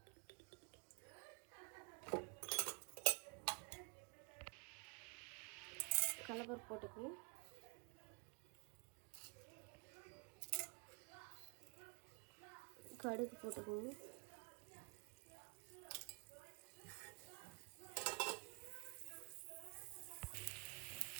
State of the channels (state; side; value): quieter; left; 35.3 dB